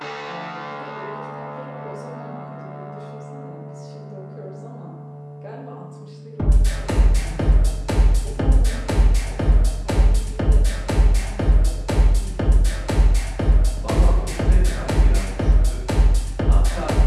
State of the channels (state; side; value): identical; both; correlation 1.00